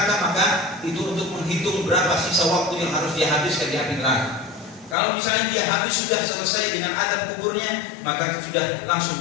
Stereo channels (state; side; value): drops out; right; at 5.0 s